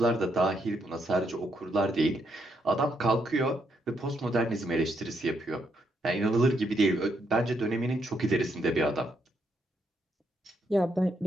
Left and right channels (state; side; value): normal; both; correlation 0.76